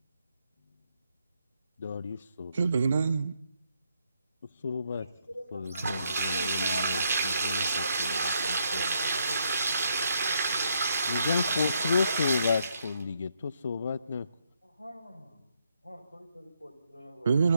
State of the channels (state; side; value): inverted; both; correlation -0.75